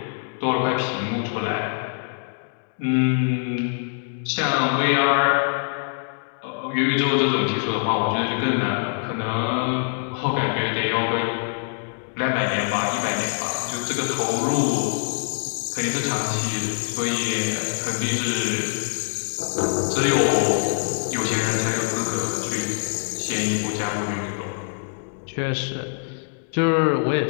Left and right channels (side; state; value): right; silent; 63 dB below the other